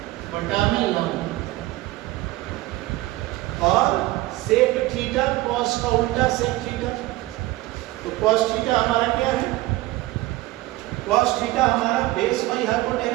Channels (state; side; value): quieter; left; 18.5 dB